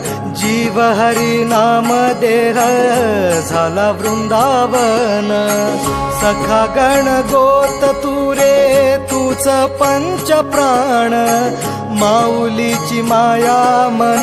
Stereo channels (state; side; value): identical; both; correlation 1.00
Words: जीव हरी नाम देह झाला वृंदावन. सखा गण गोत तुरे तूच पंच प्राण, माऊलीची माया मन